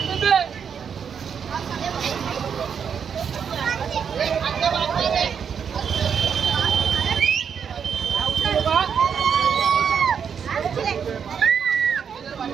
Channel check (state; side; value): quieter; left; 7.1 dB